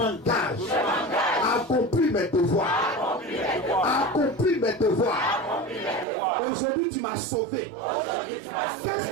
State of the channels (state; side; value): drops out; left; at 6.1 s